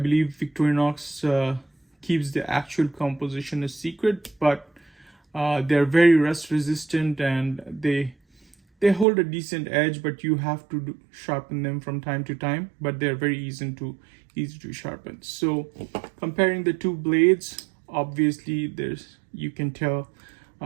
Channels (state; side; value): drops out; left; at 9.1 s